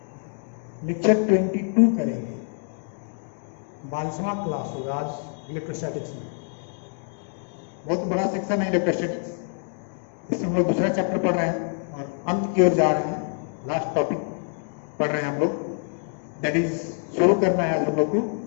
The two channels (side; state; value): right; silent; 57 dB below the other